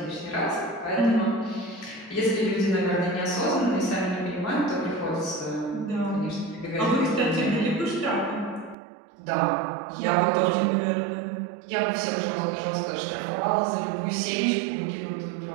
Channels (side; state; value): left; drops out; at 8.8 s